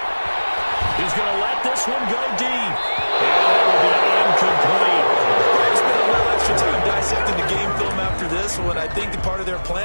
He's going to let this one go deep. And it will be incomplete. Time dissecting the game film after this one. I think the part of their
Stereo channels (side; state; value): both; inverted; correlation -1.00